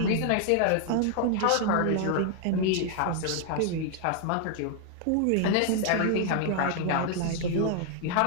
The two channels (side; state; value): both; different; correlation 0.00